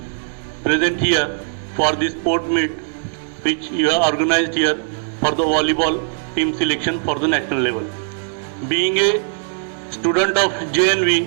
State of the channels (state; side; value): silent; left; digital silence